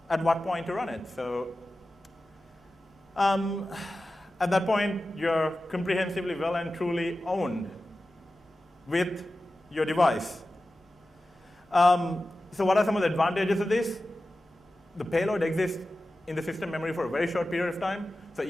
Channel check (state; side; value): normal; both; correlation 0.94